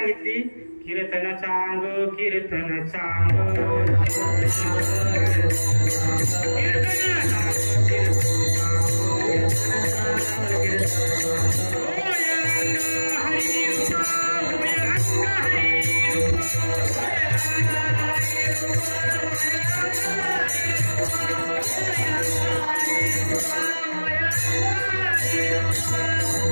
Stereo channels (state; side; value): inverted; both; correlation -1.00